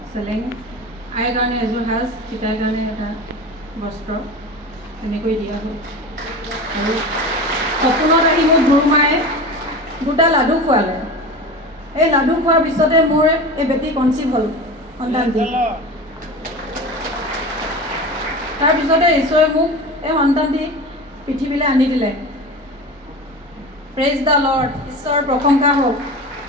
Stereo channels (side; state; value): both; normal; correlation 0.30